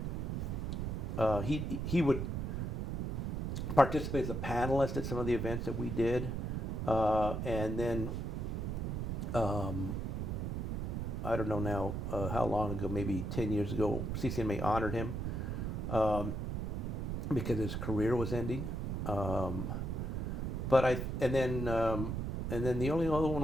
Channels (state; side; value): noise; right; rumble, 2 dB below the sound